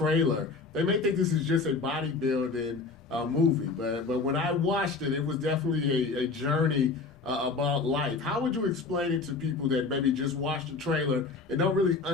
they may think this is just a bodybuilding movie, but when I watched it, it was definitely a journey about life. How would you explain it to people that maybe just watch the trailer and don't really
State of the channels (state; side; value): quieter; right; 4.2 dB